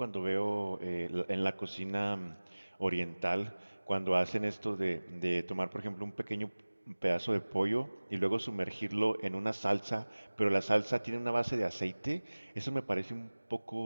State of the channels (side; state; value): both; inverted; correlation -1.00